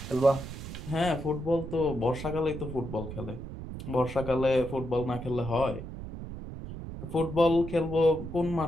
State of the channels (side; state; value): right; noise; rumble, 9 dB below the sound